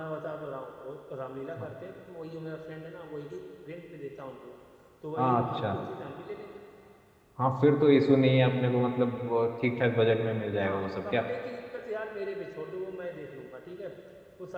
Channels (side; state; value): both; identical; correlation 1.00